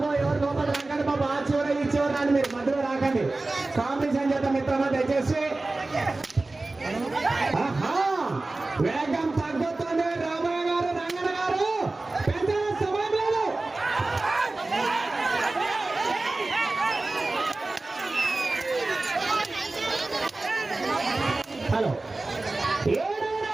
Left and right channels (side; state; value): left; quieter; 3.2 dB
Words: ఎవరు లోపల రాకండి బాబా, ఆ చివర ఈ చివర రాండి, మీరు మధ్యలో రాకండి. కాంపిటీషన్ చేత మిత్రమా దయచేసి. వేగం తగ్గుతుంది రామయ్య గారు, రంగన్న గారు పెంచాల సమయం లేదు. హలో 7వ